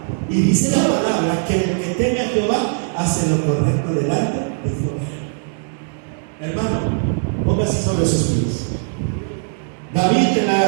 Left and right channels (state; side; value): silent; left; 66 dB below the other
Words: Y dice la palabra que el que teme a Jehová hace lo correcto delante de Jehová. Hermano, póngase sobre sus pies. David en